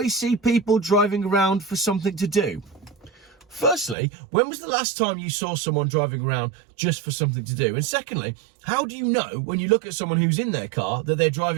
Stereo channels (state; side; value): drops out; left; at 4.0 s